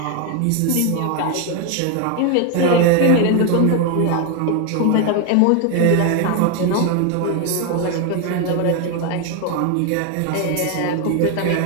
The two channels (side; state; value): both; different; correlation 0.01